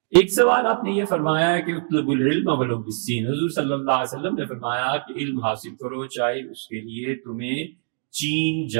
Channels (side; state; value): left; silent; 63 dB below the other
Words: ایک سوال آپ نے یہ فرمایا ہے کہ اطلب العلم ولو بالسین، حضور صلی اللہ علیہ وسلم نے فرمایا کہ علم حاصل کرو چاہے اس کے لیے تمہیں چین